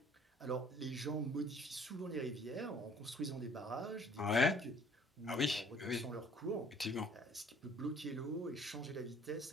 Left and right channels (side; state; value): both; normal; correlation 0.56